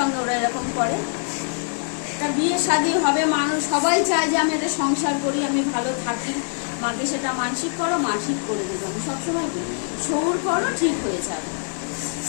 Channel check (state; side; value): silent; right; 63 dB below the other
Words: ওরা এরকম করে? তা বিয়ে শাদী হবে, মানুষ সবাই চায় যে আমি একটা সংসার করি, আমি ভালো থাকি, মাকে সেটা মানসিক করো, মা ঠিক করে দেবে। আমি সবসময় বলি সৌর করো, ঠিক হয়ে যাবে,